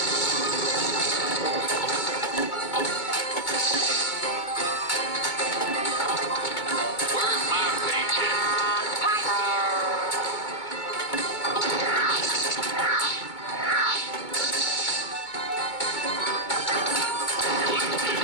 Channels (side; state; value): right; late; 2.2 ms